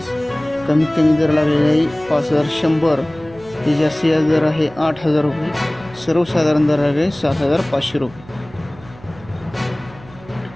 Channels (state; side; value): noise; right; hum, 22 dB below the sound